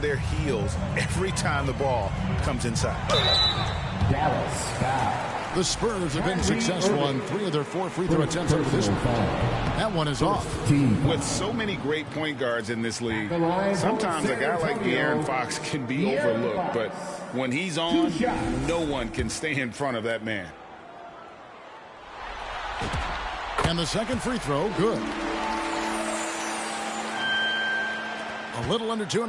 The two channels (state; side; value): identical; both; correlation 1.00